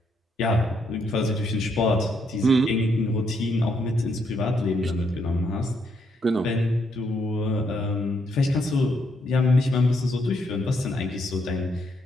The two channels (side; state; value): both; normal; correlation 0.75